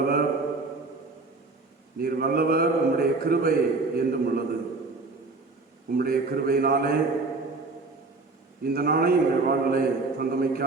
நீர் வல்லவர், உம்முடைய கிருபை என்றும் உள்ளது. உம்முடைய கிருபையினாலே இந்த நாளை எங்கள் வாழ்விலே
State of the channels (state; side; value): quieter; left; 3.7 dB